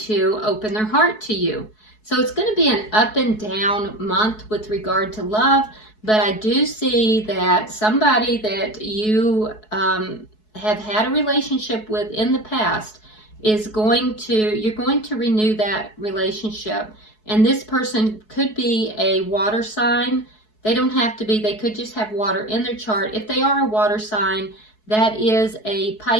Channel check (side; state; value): right; late; 4.7 ms